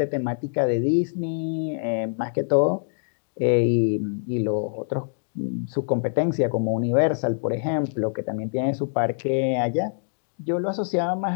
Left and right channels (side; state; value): right; silent; digital silence